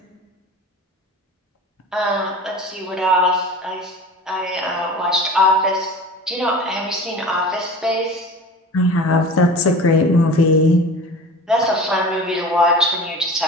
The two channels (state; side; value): normal; both; correlation 0.37